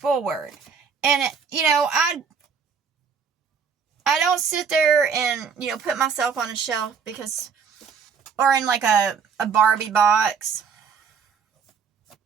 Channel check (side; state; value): left; quieter; 6.3 dB